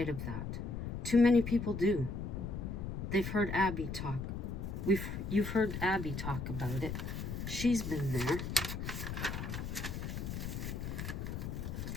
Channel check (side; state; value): left; noise; rumble, 5 dB below the sound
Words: of that. Too many people do. They've heard Abby talk. You've heard Abby talk about it. She's been there